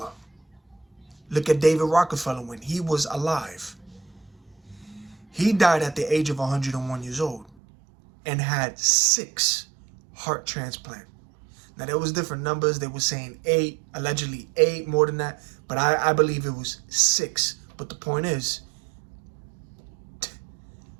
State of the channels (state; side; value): drops out; left; at 7.5 s